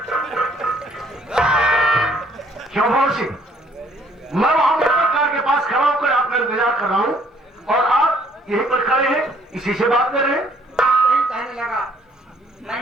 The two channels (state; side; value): normal; both; correlation 0.63